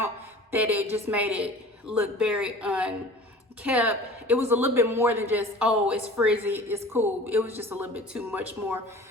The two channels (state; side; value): normal; both; correlation 0.42